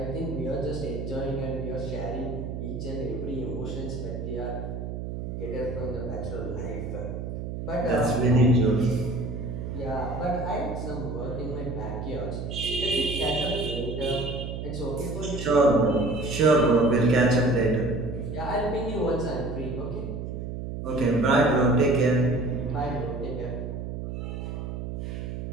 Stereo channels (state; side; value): noise; right; hum, 6 dB below the sound